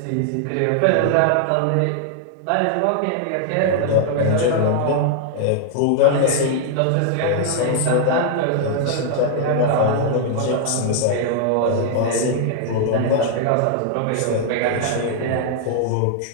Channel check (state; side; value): different; both; correlation 0.00